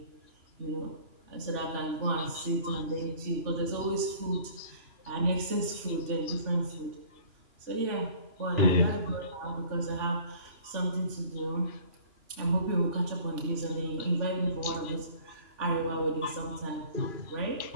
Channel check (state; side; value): late; left; 2.9 ms